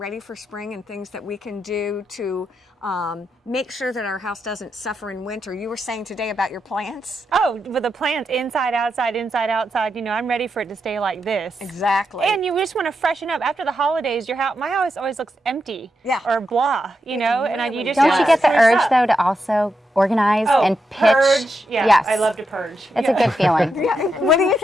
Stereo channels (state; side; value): normal; both; correlation 0.85